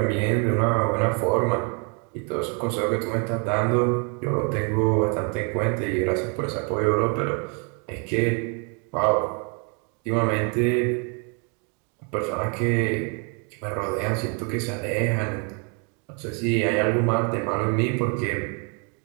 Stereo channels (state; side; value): quieter; left; 36.5 dB